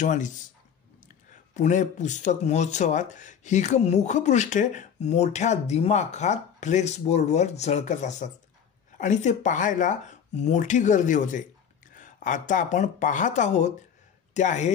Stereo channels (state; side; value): quieter; right; 7.8 dB